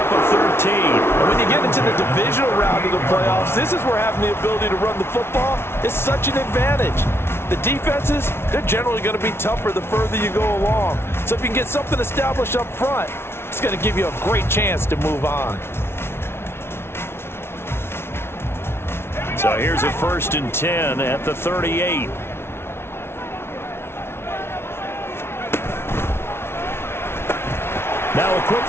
of 13. And when you get into the divisional round of the playoffs, this is where having the ability to run the football is such an advantage. The defenses, they're generally going to be tougher the further you go along. So if you can get something established up front, it's going to give you a great chance to move on. So here's a 1st and 10 at the 38. Now a quick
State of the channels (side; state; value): right; late; 0.12 ms